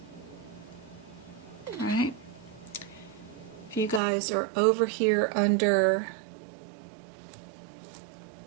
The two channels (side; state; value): left; drops out; at 4.0 s